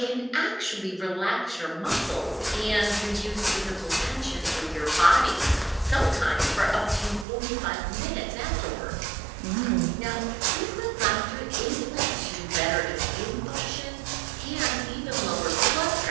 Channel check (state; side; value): drops out; left; at 7.2 s